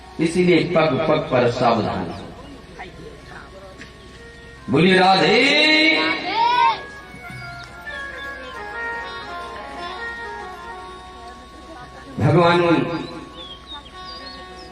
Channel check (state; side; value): identical; both; correlation 1.00